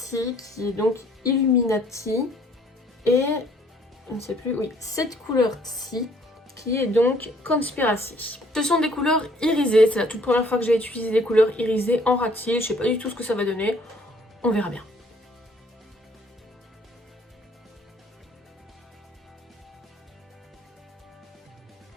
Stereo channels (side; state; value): both; normal; correlation 0.61